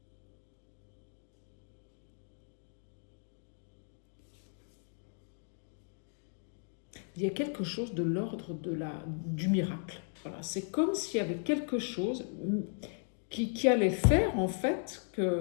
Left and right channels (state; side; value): silent; right; 54 dB below the other